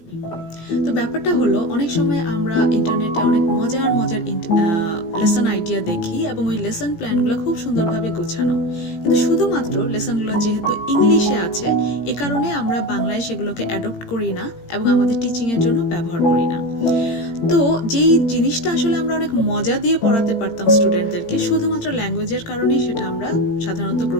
তো ব্যাপারটা হলো, অনেক সময় আমরা ইন্টারনেটে অনেক মজার মজার লেসন আইডিয়া দেখি এবং ওই লেসন প্ল্যানগুলো খুব সুন্দরভাবে গোছানো, কিন্তু শুধুমাত্র লেসনগুলো যেহেতু ইংলিশে আছে, এ কারণে আমরা বাংলায় সেগুলোকে অ্যাডপ্ট করি না এবং আমাদের টিচিংয়ের জন্য ব্যবহার করি না। তো যেই জিনিসটা আসলে আমরা অনেক মজা দিয়ে পড়াতে পারতাম স্টুডেন্টদেরকে, শুধুমাত্র ল্যাঙ্গুয়েজের কারণেই সেটা আমরা সাধারণত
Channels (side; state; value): right; late; 17 ms